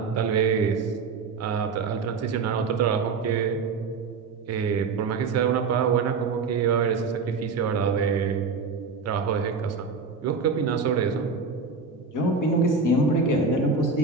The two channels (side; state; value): left; quieter; 4.6 dB